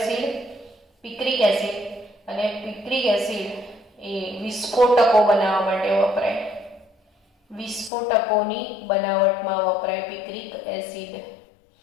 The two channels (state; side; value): drops out; right; at 7.9 s